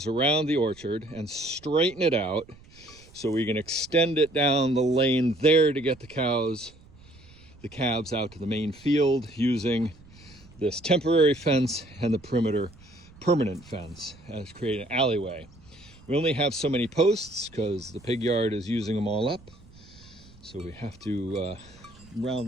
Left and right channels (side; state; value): right; noise; rumble, 24 dB below the sound